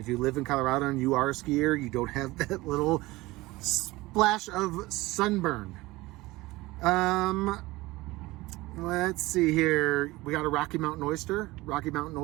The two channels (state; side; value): quieter; left; 20.0 dB